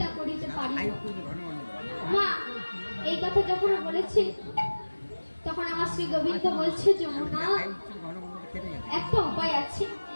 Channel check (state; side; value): inverted; both; correlation -1.00